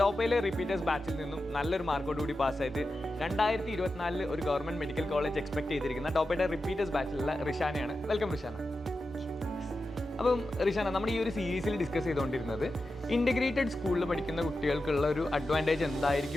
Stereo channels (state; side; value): normal; both; correlation 0.91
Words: ടോപ്പയിലെ റിപ്പീറ്റേഴ്സ് ബാച്ചിൽ നിന്നും നല്ലൊരു മാർക്കോടുകൂടി പാസ്സായിട്ട് 2024 ഒരു ഗവൺമെൻറ് മെഡിക്കൽ കോളേജ് എക്സ്പെക്ട് ചെയ്തിരിക്കുന്ന ടോപ്പയുടെ റിപ്പീറ്റേഴ്സ് ബാച്ചിലുള്ള റിഷാനയാണ്. വെൽക്കം റിഷാന. അപ്പം റിഷാന, നമ്മൾ ഈ ഒരു സീരീസിൽ ഡിസ്കസ് ചെയ്തുകൊണ്ടിരുന്നത് ഇൻ്റഗ്രേറ്റഡ് സ്കൂളിൽ പഠിക്കുന്ന കുട്ടികൾക്കുള്ള ഒരു അഡ്വാൻറ്റേജ്